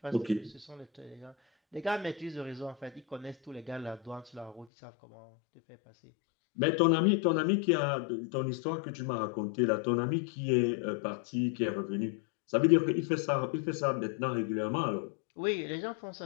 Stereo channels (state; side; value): drops out; right; at 4.7 s